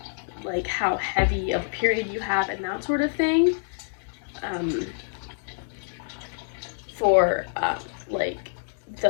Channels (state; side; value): silent; right; 60 dB below the other